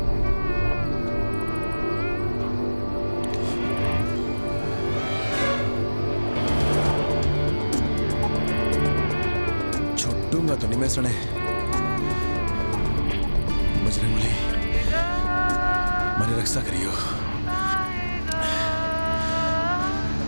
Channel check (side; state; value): both; inverted; correlation -1.00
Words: छुट्टूंगा तो नहीं मैं सने। बजरंग बली, मेरी रक्षा करियो।